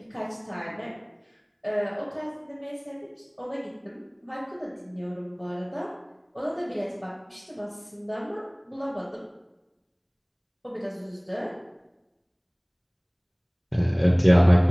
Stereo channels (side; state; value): both; identical; correlation 1.00